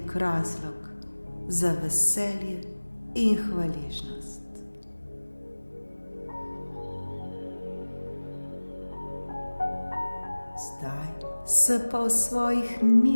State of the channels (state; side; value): inverted; both; correlation -1.00